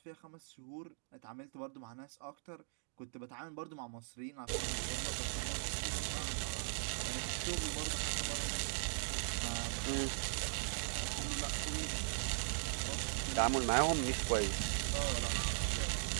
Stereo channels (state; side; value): silent; left; digital silence